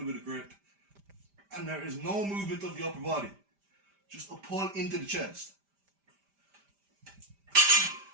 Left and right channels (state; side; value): late; left; 5.0 ms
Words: bit of grip. And there is no movement of the upper body. Just a pull into the chest.